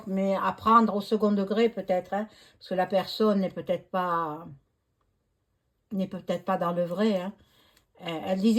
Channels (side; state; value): both; identical; correlation 1.00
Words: mais à prendre au second degré peut-être, hein, parce que la personne n'est peut-être pas dans le vrai, hein. Elle